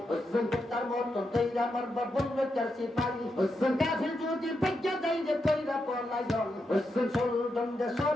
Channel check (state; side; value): normal; both; correlation 0.85